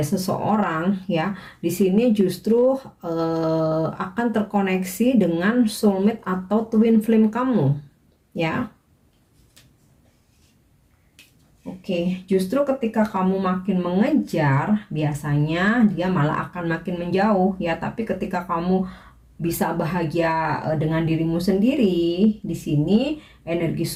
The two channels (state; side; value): identical; both; correlation 1.00